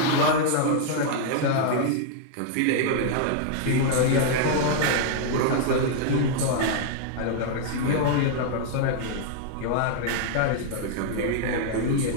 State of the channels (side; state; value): both; different; correlation -0.01